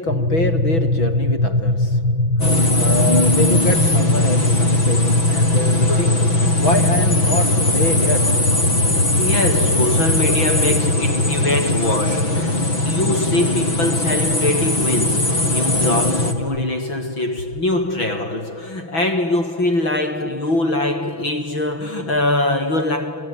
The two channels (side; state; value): right; late; 6.1 ms